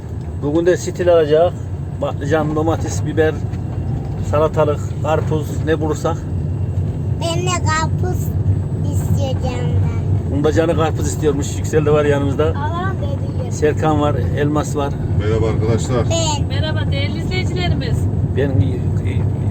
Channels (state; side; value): identical; both; correlation 1.00